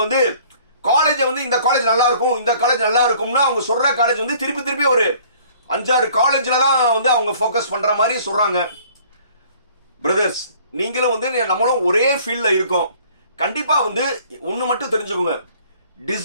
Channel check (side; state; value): both; inverted; correlation -0.55